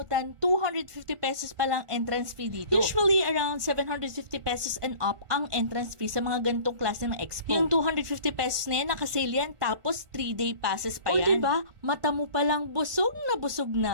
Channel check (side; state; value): left; late; 1.4 ms